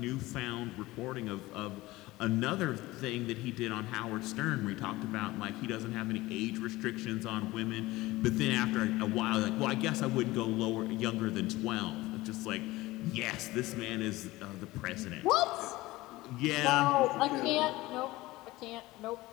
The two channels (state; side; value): quieter; right; 19.1 dB